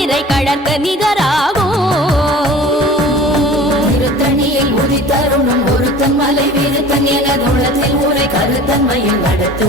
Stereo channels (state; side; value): normal; both; correlation 0.42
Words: இறை கழற்கு நிகராகும் திருத்தணியில் உதித்தருணும் ஒருத்தன் மலை வீருத்தன் எனதுள்ளத்தில் ஊரை கருத்தன்மையில் நடத்து